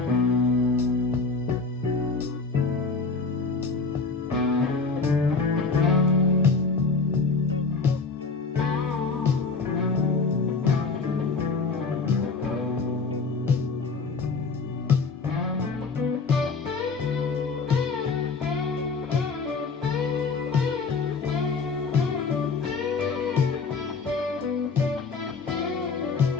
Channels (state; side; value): quieter; right; 4.5 dB